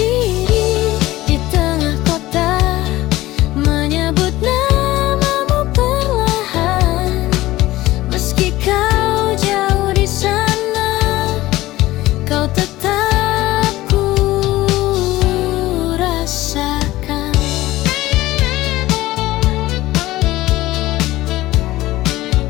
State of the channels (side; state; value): right; quieter; 17.1 dB